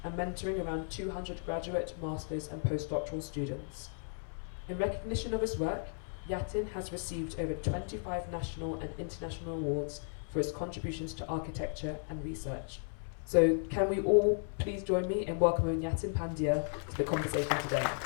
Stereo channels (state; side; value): silent; right; 55 dB below the other